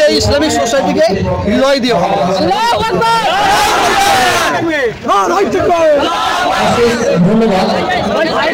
এই ইসলামিক সোসাইটিকে হৃদয় দিয়ে ভালোবাসি। ধন্যবাদ।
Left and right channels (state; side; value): identical; both; correlation 1.00